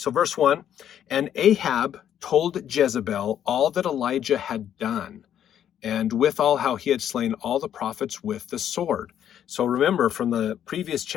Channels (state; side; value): quieter; right; 10.0 dB